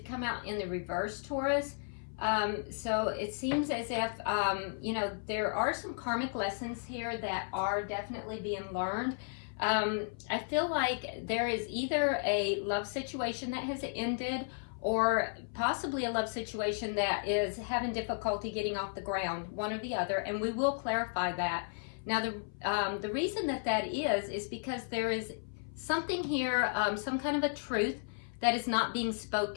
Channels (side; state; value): right; silent; 55 dB below the other